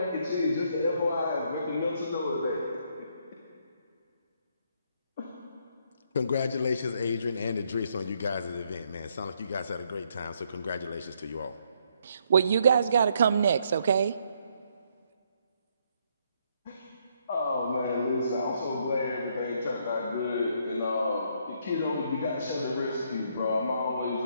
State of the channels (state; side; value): inverted; both; correlation -0.72